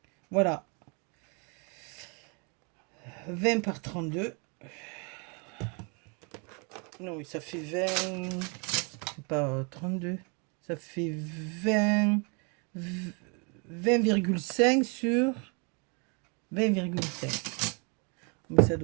Voilà. 20 par 32. Non, ça fait 20... C'est pas 32. Ça fait 20,5 sur 20,5. Mais ça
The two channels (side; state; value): left; quieter; 35.0 dB